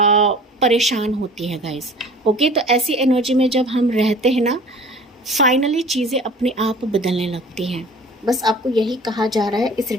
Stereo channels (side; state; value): both; normal; correlation 0.45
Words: परेशान होती है गाइस। ओके, तो ऐसी एनर्जी में जब हम रहते हैं ना, फाइनली चीज़ें अपने आप बदलने लगती हैं। बस आपको यही कहा जा रहा है इस